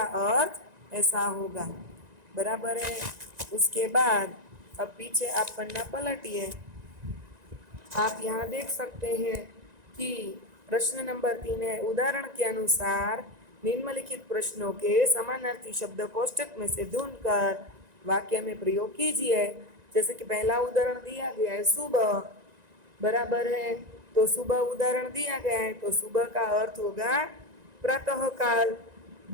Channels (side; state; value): left; late; 1.9 ms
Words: अर्थ ऐसा होगा। बराबर है। उसके बाद अब पीछे आप पन्ना पलटिए। आप यहाँ देख सकते हैं कि प्रश्न नंबर 3 है, उदाहरण के अनुसार निम्नलिखित प्रश्नों के समानार्थी शब्द कोष्ठक में से ढूंढकर वाक्य में प्रयोग कीजिए। जैसे कि पहला उदाहरण दिया गया है सुबह, बराबर है। तो सुबह उदाहरण दिया गया है, तो सुबह का अर्थ होगा प्रातः काल,